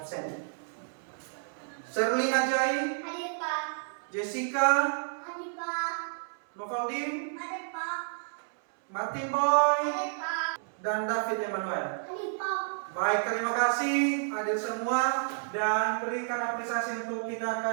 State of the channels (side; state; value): left; silent; 57 dB below the other